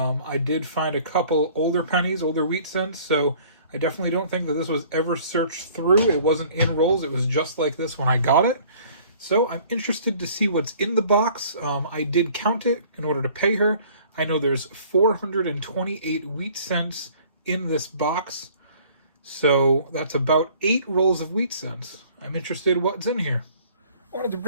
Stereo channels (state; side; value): inverted; both; correlation -0.54